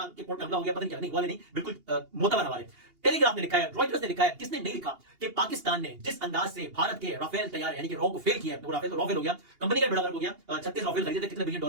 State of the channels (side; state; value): left; late; 2.8 ms